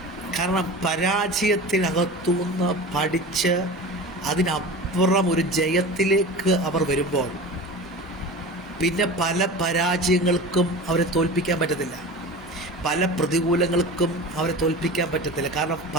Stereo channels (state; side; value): normal; both; correlation 0.33